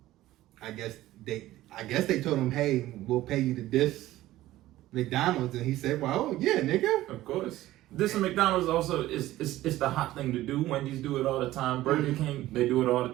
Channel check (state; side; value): quieter; left; 15.6 dB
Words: guess they told him, hey, we'll pay you to diss McDonald's, and he said, well, yeah, nigga. Of course. This and McDonald's also is the hot thing to do. Wendy's do it all the time. Burger King, they do it all the